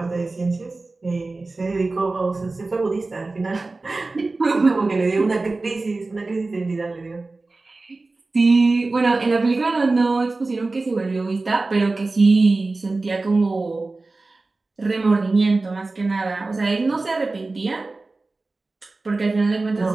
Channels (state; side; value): quieter; left; 3.4 dB